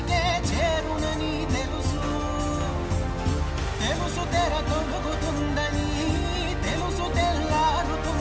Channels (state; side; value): identical; both; correlation 1.00